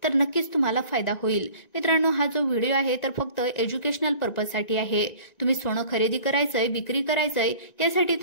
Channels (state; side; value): late; right; 1.9 ms